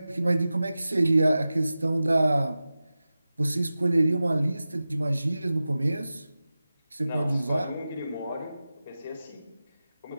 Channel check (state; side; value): inverted; both; correlation -0.95